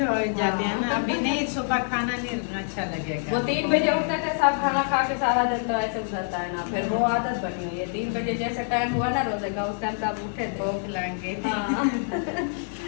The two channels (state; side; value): silent; right; 61 dB below the other